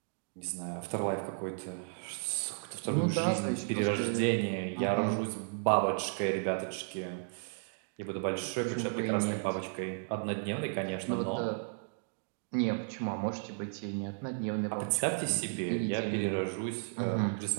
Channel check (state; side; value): silent; left; digital silence